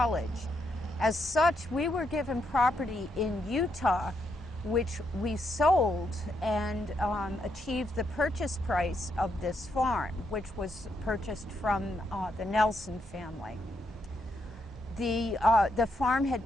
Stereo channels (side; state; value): both; normal; correlation 0.79